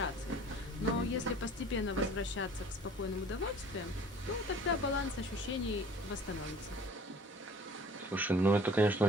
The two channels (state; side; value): normal; both; correlation 0.49